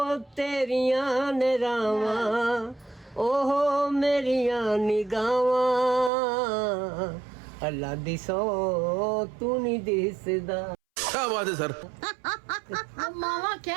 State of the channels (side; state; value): left; drops out; at 6.1 s